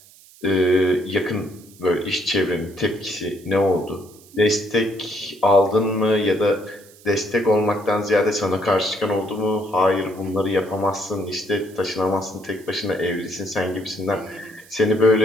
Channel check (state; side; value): noise; right; hiss, 24 dB below the sound